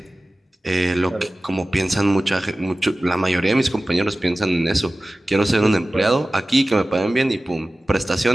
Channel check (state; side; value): normal; both; correlation 0.97